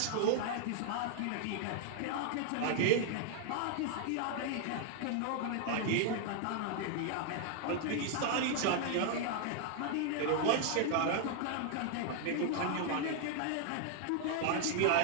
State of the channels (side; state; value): both; different; correlation 0.00